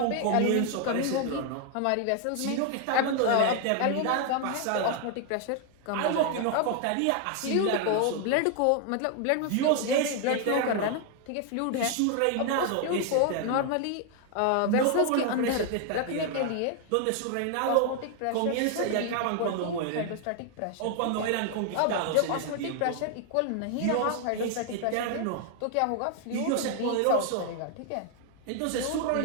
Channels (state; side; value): different; both; correlation 0.00